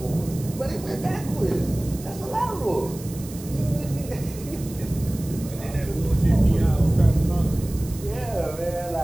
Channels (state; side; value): noise; right; hiss, 16 dB below the sound